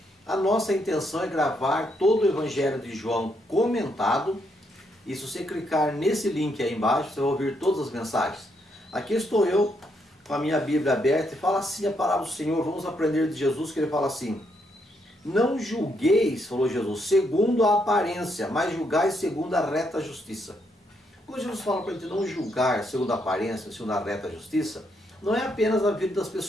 A nossa intenção é gravar todo o Evangelho de João comentado. E se você clicar nesse link aí embaixo, você vai ouvir todas as mensagens. Aqui estou eu, com a minha Bíblia aberta, e fala assim a palavra do Senhor. Vamos aprender de Jesus, que ele fala assim: não julgueis, falou Jesus, segundo a aparência, mas julgai segundo a reta justiça. Quando Jesus fala para a gente não julgar segundo a aparência, segundo a reta justiça, não é apenas a vida das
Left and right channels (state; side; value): normal; both; correlation 0.76